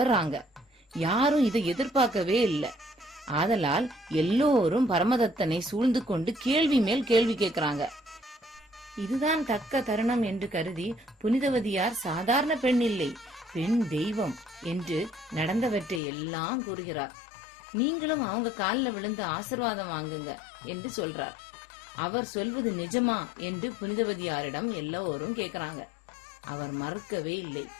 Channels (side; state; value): right; drops out; at 16.0 s